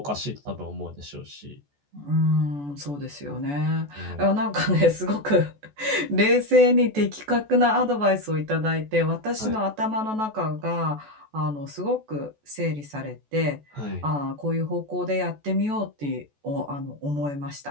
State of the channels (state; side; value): late; left; 14 ms